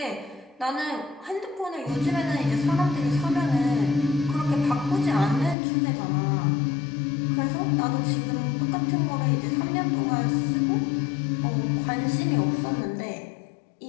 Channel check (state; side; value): drops out; right; at 5.6 s